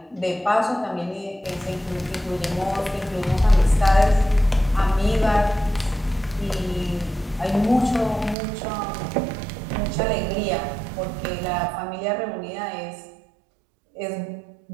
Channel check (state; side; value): drops out; left; at 8.3 s